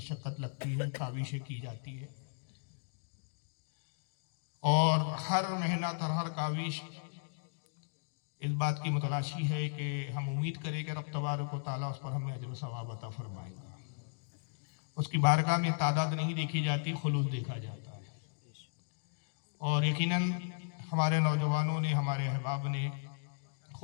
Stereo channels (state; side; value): silent; right; digital silence